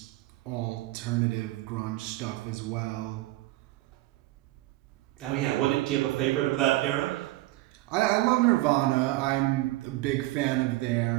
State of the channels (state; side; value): quieter; left; 18.3 dB